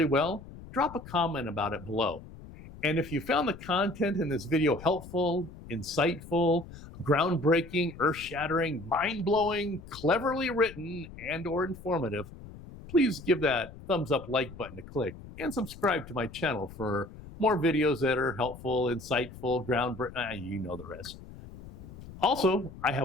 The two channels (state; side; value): noise; left; rumble, 16 dB below the sound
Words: well, drop a comment about it below. And if you found the content in this video helpful, insightful, groundbreaking, earth-shattering, mind-blowing, cleverly written, and/or informative, please give that thumbs up like button a click and subscribe to my channel for more videos that are helpful, insightful, groundbreaking, you know the rest. Also, I